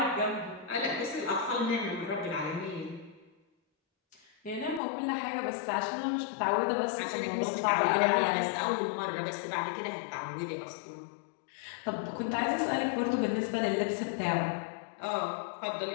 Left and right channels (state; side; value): drops out; right; at 4.8 s